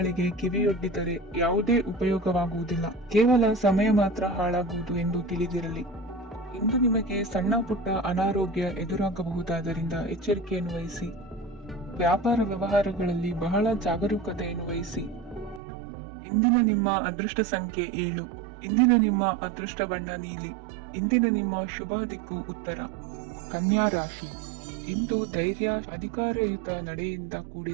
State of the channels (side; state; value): left; drops out; at 15.6 s